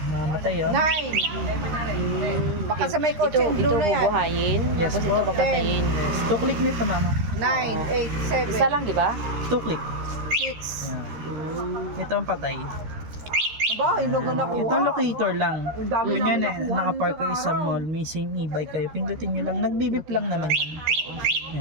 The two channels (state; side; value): late; left; 13 ms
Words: mamatay yun. 9. Baka sa may kotse, Ito blue na yan. bubuhayin, Yes, tapos po. ito papatayin. Yes. 2 click nito, mama. 9, 8, 7, Isa lang, di ba? 2 click. 6. Yan. Ito ang patay. Aba, yung logo na ko. Ito locator lang. Ang dami Kung yan namin nakuha nakapark kayo sa mall, may same e-bike kayo, pindutin nyo lang. Nagbibip lang naman yan.